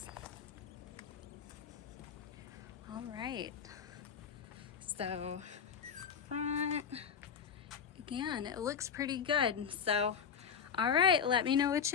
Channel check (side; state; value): right; quieter; 7.2 dB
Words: All right, so front, again, it looks pretty good. So, all right, let me know what